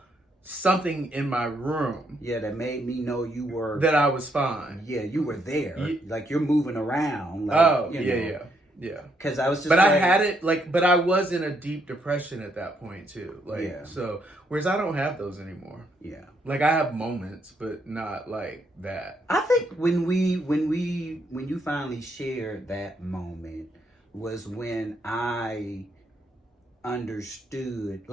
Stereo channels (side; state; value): both; normal; correlation 0.74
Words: something in my room. Yeah, that made me know you were. That I was fine. Yeah, you were there. Like, you're moving around. Like, yeah. Because I was just. But I had it but I was in a deep depression at that point too. Like, so whereas I don't have those anymore. Yeah. Like, I have moments, but not like that. I think when you finally shared that moment was when I understood.